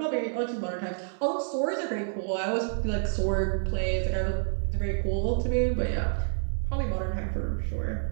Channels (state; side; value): silent; left; 59 dB below the other